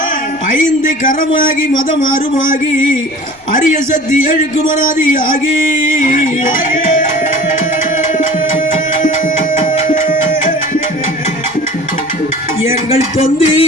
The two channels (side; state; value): left; noise; rumble, 30 dB below the sound